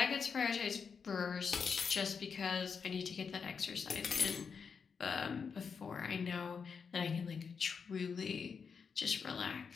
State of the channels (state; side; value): quieter; right; 5.9 dB